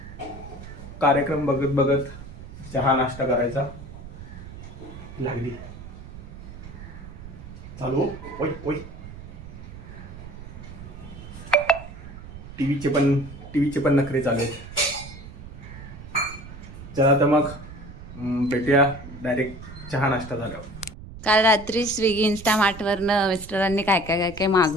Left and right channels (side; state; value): right; noise; rumble, 14 dB below the sound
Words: कार्यक्रम बघत बघत चहा नाश्ता करायचा. लागली चालू. ओय ओय, टीव्हीचे पण नखरे चालू आहेत. चला तर मग भेटूया डायरेक्ट चहा नाश्ता झाल्यावर. काल रात्री स्विगी इन्स्टामार्टवरनं मिस्टरांनी काय काय काय काय